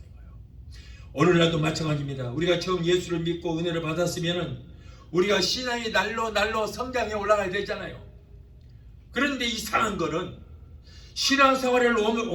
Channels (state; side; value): identical; both; correlation 1.00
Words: 거예요. 오늘날도 마찬가지입니다. 우리가 처음 예수를 믿고 은혜를 받았으면 우리가 신앙이 날로 성장해 올라가야 되잖아요. 그런데 이상한 거는 신앙생활을